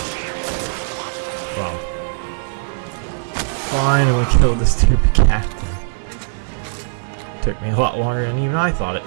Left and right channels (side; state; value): left; silent; digital silence